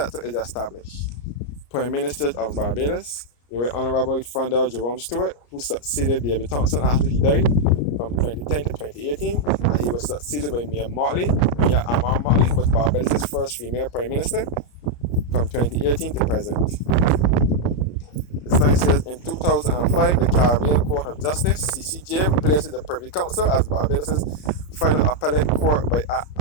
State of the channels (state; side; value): late; right; 34 ms